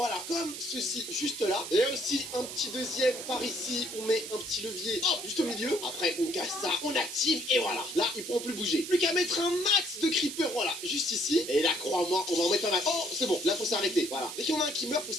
comme ceci, juste là. Et aussi un petit deuxième par ici, on met un petit levier, hop, juste au milieu. Après, on casse ça, on active et voilà. Là, ils pourront plus bouger. Plus qu'à mettre un max de creeper, voilà, juste ici. Et là, crois-moi, on va en mettre un max. Oh, c'est bon, là, faut s'arrêter. Voilà. Dès qu'il y en a un qui meurt, faut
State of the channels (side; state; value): right; noise; hiss, 9 dB below the sound